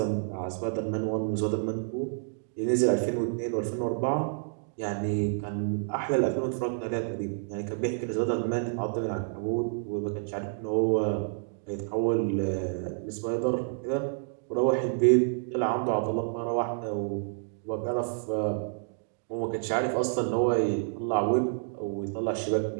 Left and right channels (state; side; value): silent; left; digital silence